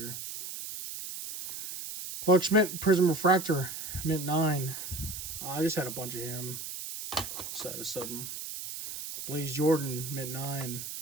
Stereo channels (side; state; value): right; noise; hiss, 8 dB below the sound